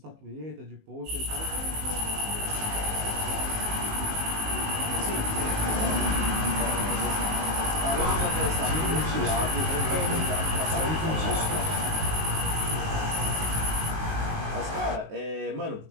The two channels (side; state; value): left; late; 19 ms